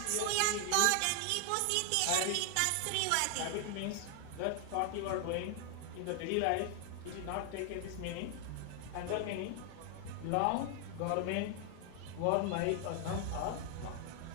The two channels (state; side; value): different; both; correlation 0.00